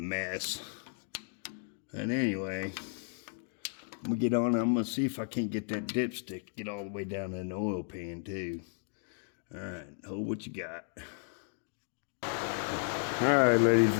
And anyway, I'm gonna get on. I'm gonna see if I can't get that dipstick, get all the way down in the oil pan too. All right, hold what you got. All right, ladies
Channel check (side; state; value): right; silent; 55 dB below the other